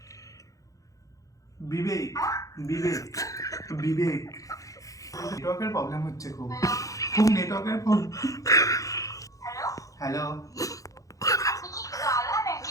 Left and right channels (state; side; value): late; right; 0.16 ms